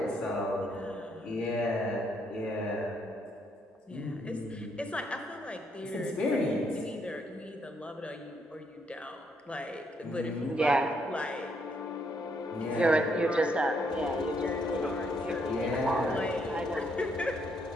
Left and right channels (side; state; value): both; normal; correlation 0.73